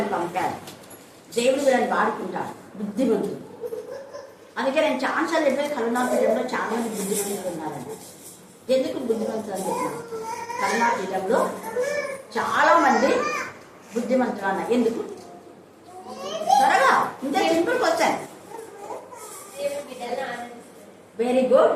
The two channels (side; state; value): both; identical; correlation 1.00